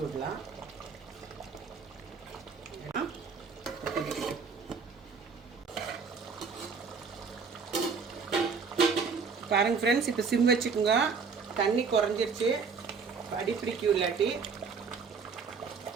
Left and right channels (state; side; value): quieter; left; 5.4 dB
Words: விடலாம். பாருங்க ஃப்ரெண்ட்ஸ், இப்போ சிம் வச்சுக்கோங்க. தண்ணி குறைஞ்சிருச்சு, அடி பிடிக்கும் இல்லாட்டி.